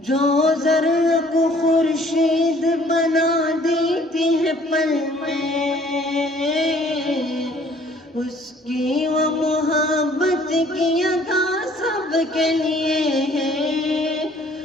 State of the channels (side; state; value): both; normal; correlation 0.57